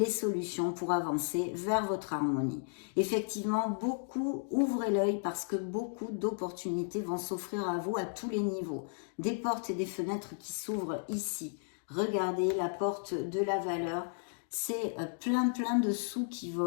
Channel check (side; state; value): right; silent; digital silence